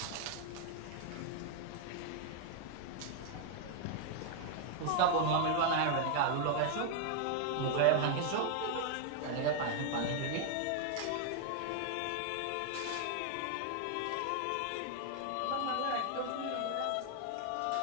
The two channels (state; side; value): different; both; correlation 0.00